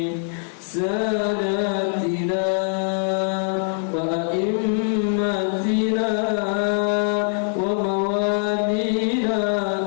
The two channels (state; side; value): silent; right; 64 dB below the other